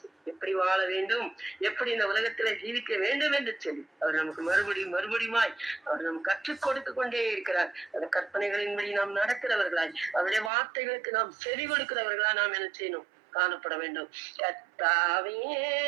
எப்படி வாழ வேண்டும், எப்படி இந்த உலகத்துல ஜீவிக்க வேண்டும் என்று சொல்லி அவர் நமக்கு மறுபடியுமாய் அவர் நமக்கு கற்றுக் கொடுத்து கொண்டே இருக்கிறார். அந்த கற்பனைகளின்படி நாம் நடக்கிறவர்களாய், அவருடைய வார்த்தைகளுக்கு நாம் செவி கொடுக்கிறவர்களா நாம் என்ன செய்யணும், காணப்பட வேண்டும். கர்த்தாவே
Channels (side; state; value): left; drops out; at 10.5 s